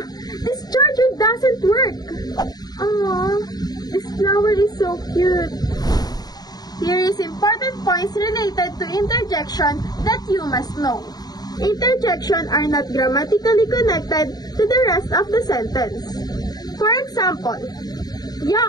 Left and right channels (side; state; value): right; late; 0.19 ms